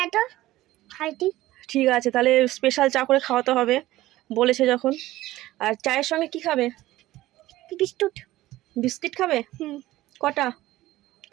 তো খাইতি। ঠিক আছে, তাহলে স্পেশাল চা করে খাওয়াতে হবে বলেছে যখন। আর চায়ের সঙ্গে কি খাবে? বিস্কুট। বিস্কিট খাবে? কটা?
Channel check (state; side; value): quieter; left; 16.4 dB